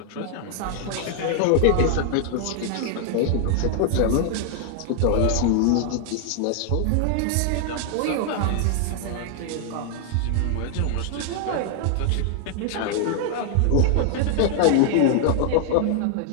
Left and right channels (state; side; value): different; both; correlation 0.00